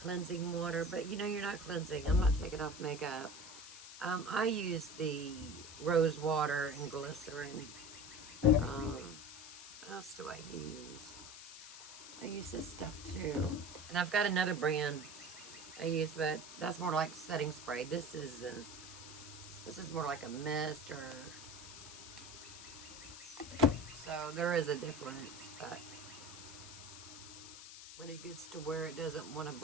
cleansing water, but you know you're not cleansing. I'm not taking off makeup. I use the rose water and glycerin. What else do I use? I use this stuff too. And I've got another brand I use, but that's more like setting spray. This is more like a mist, or so there is a difference, but when it gets to where it doesn't want to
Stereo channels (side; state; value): left; noise; hiss, 13 dB below the sound